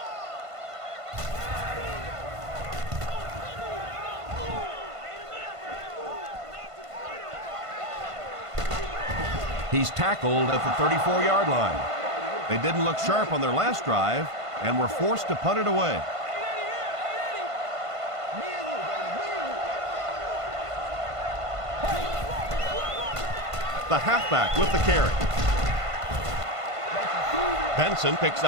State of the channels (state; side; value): late; left; 1.5 ms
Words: He's tackled at the 34-yard line. They didn't look sharp on their last drive and were forced to punt it away. The halfback with the carry. Benson picks